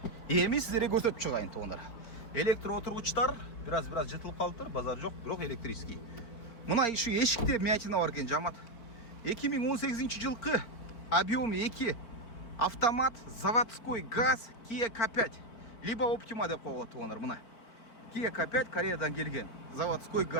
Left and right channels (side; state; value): right; late; 4.5 ms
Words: еме сіздерге көрсетіп шығайын туғандар. Электро отырғыштар біраз жытылып қалыптыр, базар жоқ, бірақ электрический. Мына еще ешікте мятина бар екен, жамат. 2018 жылқы объем 2 автомат, заводской газ Kia K5 либо Optima деп қойылады туғандар. Мына Kia K5 Кореядан келген заводской